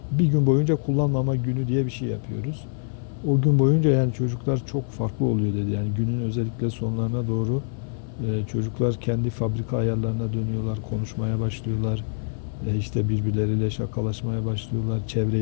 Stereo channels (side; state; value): right; silent; 55 dB below the other